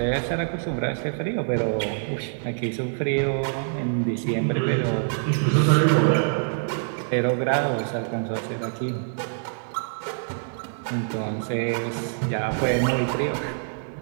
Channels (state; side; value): silent; left; digital silence